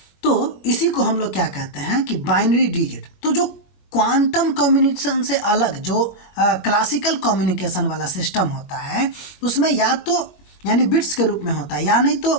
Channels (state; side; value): late; right; 20 ms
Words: तो इसी को हम लोग क्या कहते हैं कि बाइनरी डिजिट। तो जो क्वांटम कम्युनिकेशन से अलग जो क्लासिकल कम्युनिकेशन वाला सिस्टम होता है, उसमें या तो यानी बिट्स के रूप में होता है, या नहीं